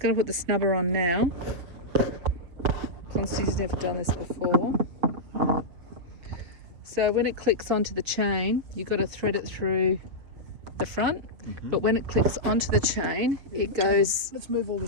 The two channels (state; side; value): late; left; 6.6 ms